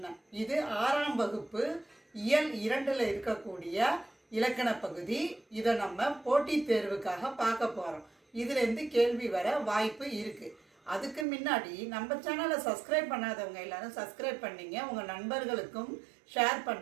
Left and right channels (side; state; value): left; drops out; at 11.2 s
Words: இது 6ஆம் வகுப்பு இயல் 2ல் இருக்கக்கூடிய இலக்கண பகுதி. இதை நம்ம போட்டித் தேர்வுக்காக பார்க்க போகிறோம். இதுலேருந்து கேள்வி வர வாய்ப்பு இருக்குது. அதுக்கு முன்னாடி நம்ம சேனலை சப்ஸ்கிரைப் பண்ணாதவங்க எல்லாரும் சப்ஸ்கிரைப் பண்ணிங்க, உங்கள் நண்பர்களுக்கும் ஷேர்